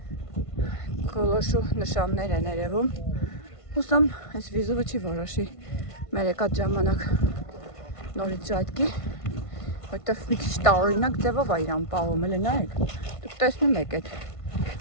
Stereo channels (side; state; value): right; late; 1.5 ms